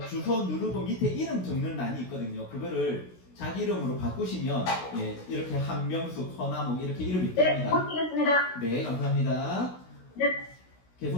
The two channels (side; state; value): right; late; 16 ms